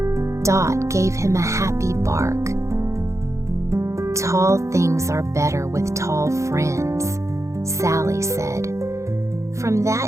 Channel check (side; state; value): left; late; 0.14 ms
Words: Dot gave him a happy bark. "Tall things are better with tall friends," Sally said. From